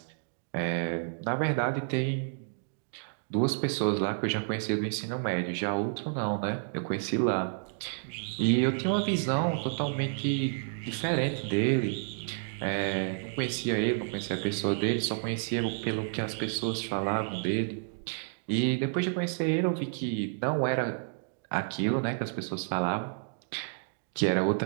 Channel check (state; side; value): silent; left; digital silence